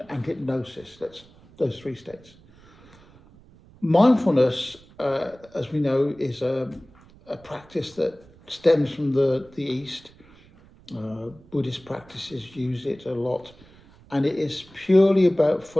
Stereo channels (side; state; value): right; noise; rumble, 25 dB below the sound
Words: and hypnosis. That's those three states. Mindfulness, as we know, is a practice that stems from the East. Buddhist practices use it a lot. And it is purely about